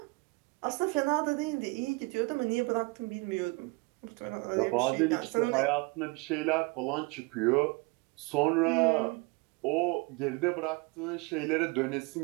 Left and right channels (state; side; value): quieter; left; 27.1 dB